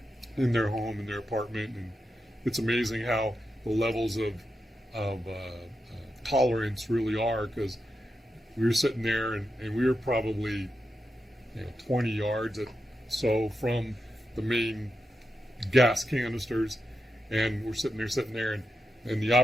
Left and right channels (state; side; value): normal; both; correlation 0.88